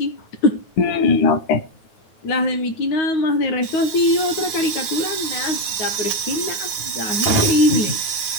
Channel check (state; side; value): late; right; 9.3 ms